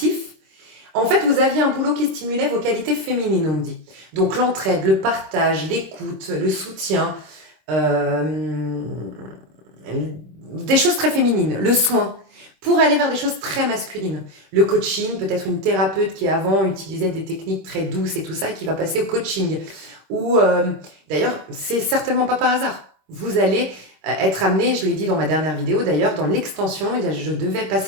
En fait, vous aviez un boulot qui stimulait vos qualités féminines, on me dit. Donc l'entraide, le partage, l'écoute, le soutien, des choses très féminines, le soin, pour aller vers des choses très masculines. Le coaching, peut-être une thérapeute qui avant utilisait des techniques très douces et tout ça, et qui va passer au coaching. Ou d'ailleurs, c'est certainement pas par hasard. Vous allez être amené, je l'ai dit dans ma dernière vidéo d'ailleurs, dans l'extension, je devais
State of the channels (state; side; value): late; left; 26 ms